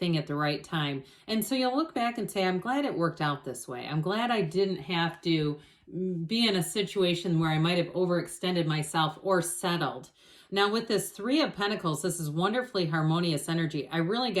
at the right time. And so you'll look back and say, I'm glad it worked out this way. I'm glad I didn't have to be in a situation where I might have overextended myself or settled. Now with this 3 of Pentacles, this is wonderfully harmonious energy. I really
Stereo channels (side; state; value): both; identical; correlation 1.00